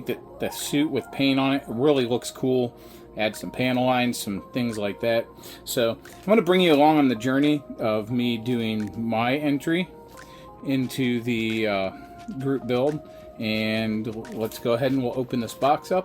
that the suit with paint on it really looks cool. Add some panel lines, some things like that. So I'm going to bring you along on the journey of me doing my entry into the group build, and let's go ahead and we'll open this box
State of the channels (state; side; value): identical; both; correlation 1.00